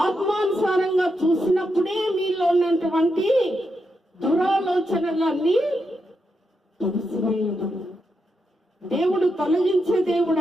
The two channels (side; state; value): both; normal; correlation 0.84